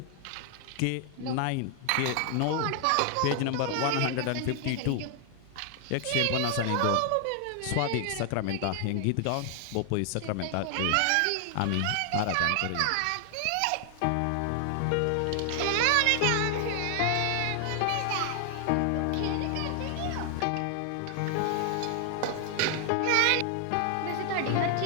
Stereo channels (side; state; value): both; different; correlation 0.00